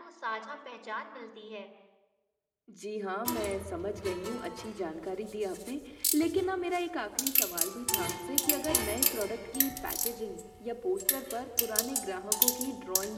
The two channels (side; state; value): both; identical; correlation 1.00